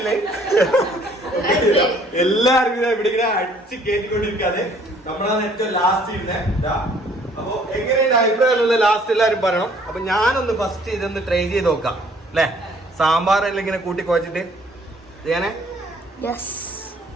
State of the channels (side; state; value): both; normal; correlation 0.59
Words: എല്ലാവർക്കും ഇവിടെ ഇങ്ങനെ അടിച്ച് കയറ്റിക്കൊണ്ടിരിക്കാതെ നമ്മളാണ് ഏറ്റവും ലാസ്റ്റ് ഇരുന്നേ. അപ്പൊ എങ്ങനെയുണ്ട് അഭിപ്രായമുള്ള ലാസ്റ്റ് എല്ലാവരും പറയണം. അപ്പൊ ഞാനൊന്ന് ഫസ്റ്റ് ഇതൊന്ന് ട്രൈ ചെയ്ത് നോക്കാം അല്ലെ. സാമ്പാറെല്ലാം ഇങ്ങനെ കൂട്ടി കുഴച്ചിട്ട് ചെയ്യാനേ.